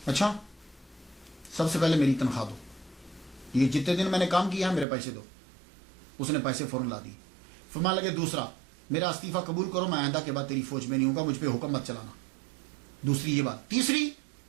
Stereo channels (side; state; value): left; drops out; at 4.9 s